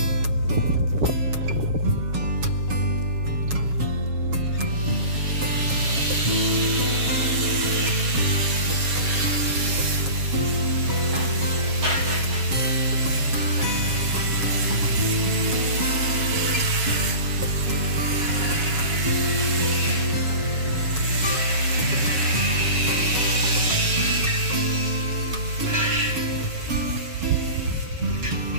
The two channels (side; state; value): left; late; 7.2 ms